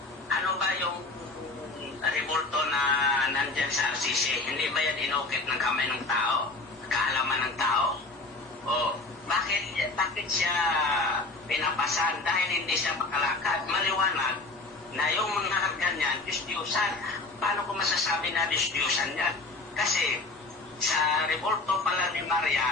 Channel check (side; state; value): right; quieter; 3.3 dB